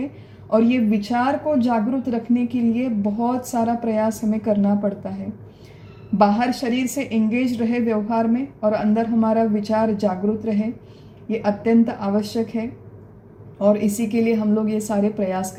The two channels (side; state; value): both; identical; correlation 1.00